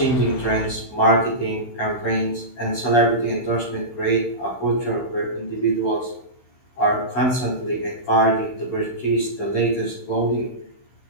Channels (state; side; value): late; right; 16 ms